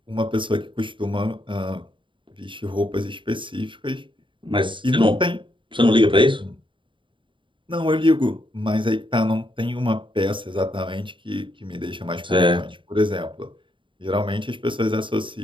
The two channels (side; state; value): left; late; 0.24 ms